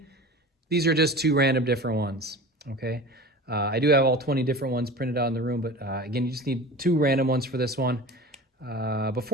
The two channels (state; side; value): normal; both; correlation 0.35